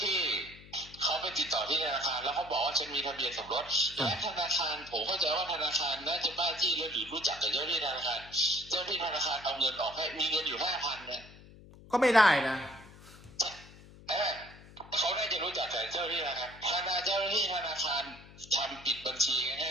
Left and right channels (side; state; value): left; noise; hum, 20 dB below the sound